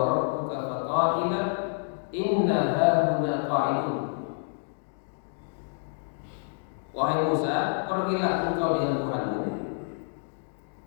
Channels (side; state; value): right; silent; digital silence